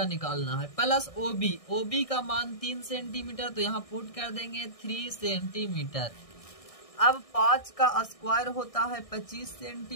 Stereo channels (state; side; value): late; right; 1.6 ms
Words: निकालना है, प्लस OB का मान 3 सेंटीमीटर तो यहाँ पुट कर देंगे 3 सेंटीमीटर। अब 5 का स्क्वायर होता है 25